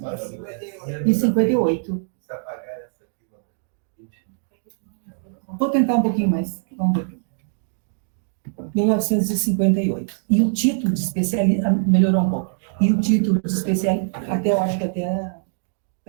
Vou tentar um pouquinho mais, vamos ver. 1958. E o título de especialista, melhorou um pouco, e o título de especialista, eu acho que até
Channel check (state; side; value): silent; left; digital silence